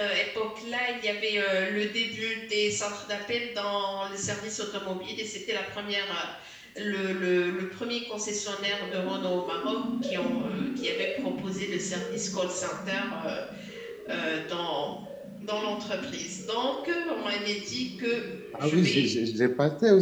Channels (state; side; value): identical; both; correlation 1.00